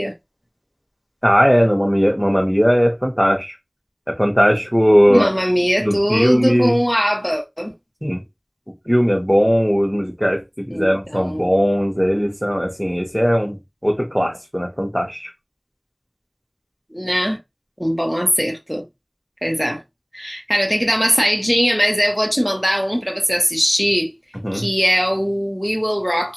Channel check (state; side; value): identical; both; correlation 1.00